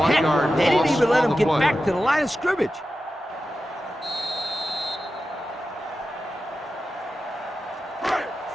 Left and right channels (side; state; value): both; normal; correlation 0.92